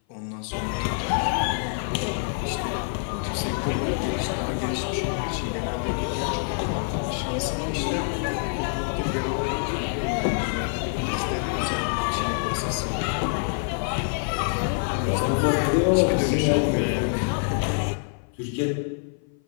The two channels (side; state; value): right; silent; 56 dB below the other